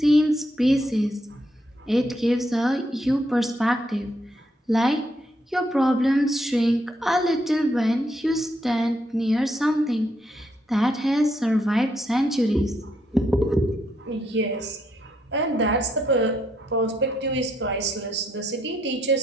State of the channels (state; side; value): normal; both; correlation 0.75